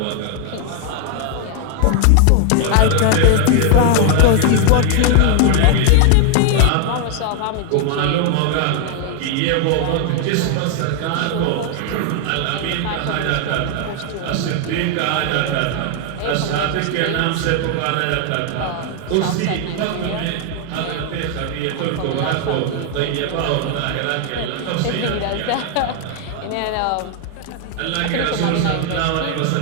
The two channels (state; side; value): different; both; correlation 0.01